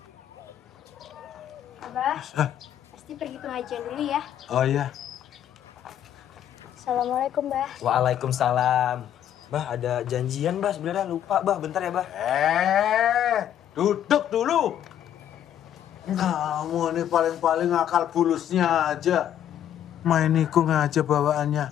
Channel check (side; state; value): right; quieter; 10.5 dB